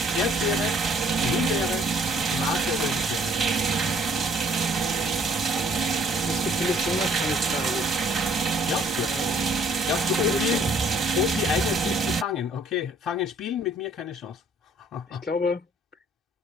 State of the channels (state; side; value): normal; both; correlation 0.60